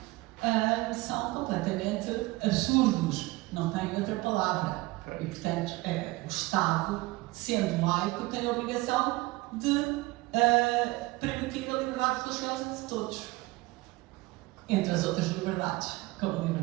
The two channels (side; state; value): left; quieter; 21.5 dB